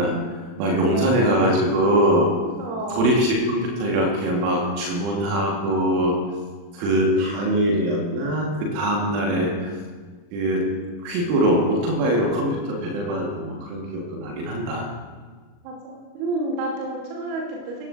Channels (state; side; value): late; left; 40 ms